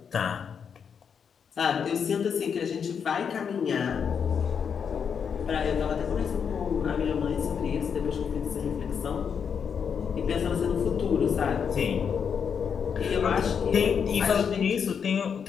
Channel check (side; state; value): right; quieter; 6.9 dB